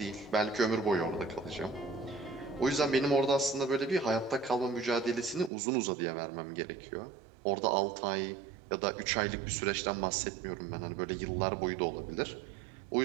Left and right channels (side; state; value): left; drops out; at 5.5 s